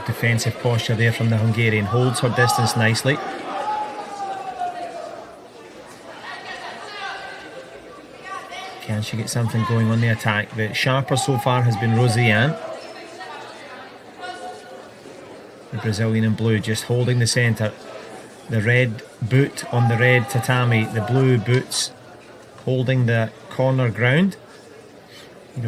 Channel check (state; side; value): identical; both; correlation 1.00